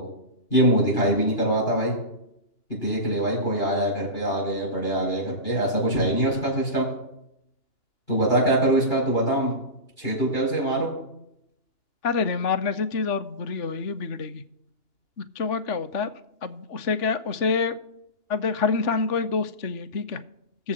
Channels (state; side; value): late; right; 2.9 ms